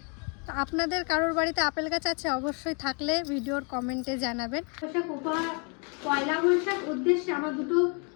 তো আপনাদের কারোর বাড়িতে আপেল গাছ আছে? অবশ্যই থাকলে ভিডিওর কমেন্টে জানাবেন। পয়লা বৈশাখ উদ্দেশ্যে আমার দুটো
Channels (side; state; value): right; quieter; 36.7 dB